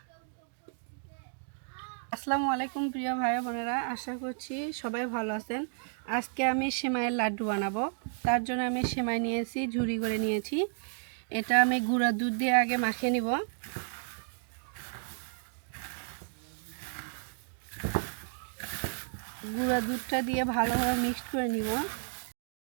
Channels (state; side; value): silent; left; digital silence